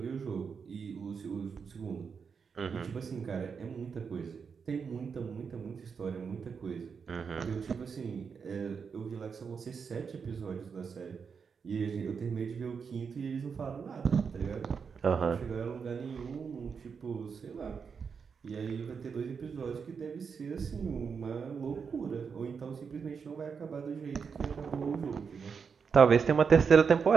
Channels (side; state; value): left; quieter; 6.0 dB